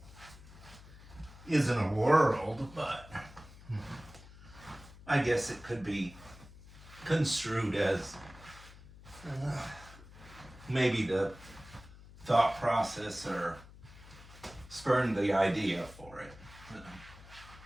isn't a world, but I guess it could be construed as maybe the thought process or spurned the idea for it.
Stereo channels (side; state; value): left; noise; hum, 19 dB below the sound